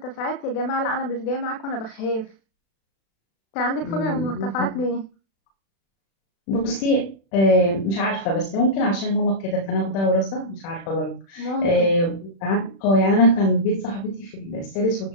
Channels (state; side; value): late; right; 36 ms